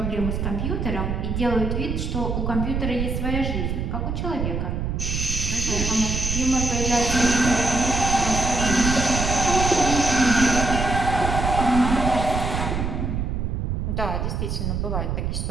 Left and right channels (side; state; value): right; noise; rumble, 1 dB below the sound